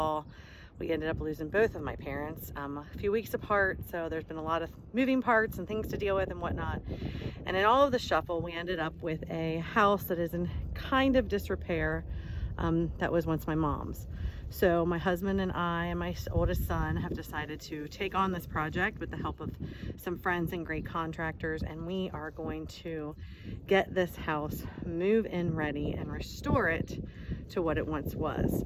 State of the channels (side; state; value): both; identical; correlation 1.00